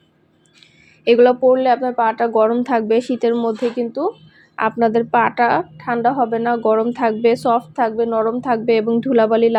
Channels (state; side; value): identical; both; correlation 1.00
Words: এগুলো পরলে আপনার পাটা গরম থাকবে। শীতের মধ্যে কিন্তু আপনাদের পাটা ঠান্ডা হবে না, গরম থাকবে, সফট থাকবে, নরম থাকবে এবং ধুলাবালি